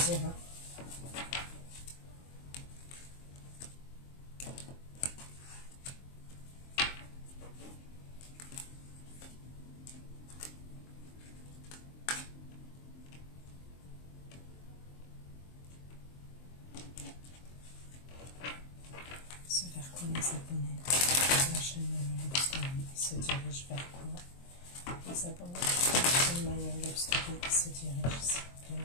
Hein. Ce vers quoi les abonnés la chaîne Love Story, ils se dirigent vers quoi? Les abonnés de la chaîne Love Story, ils se dirigent, s'il vous plaît,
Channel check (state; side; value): late; right; 23 ms